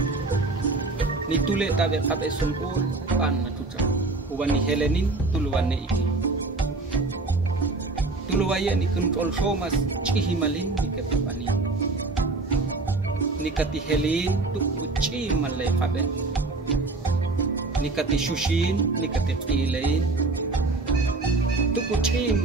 Ni tule tabe kabe sungkul pan la tucah. Uwani helenin tuluwane iki. Tuluwaya ni kontrol somas cihimalin ni ketipani. Nikati helin tuk uci malay kabe. Nikati shushin, nikati pilain. Tuk uci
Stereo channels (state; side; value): quieter; left; 3.4 dB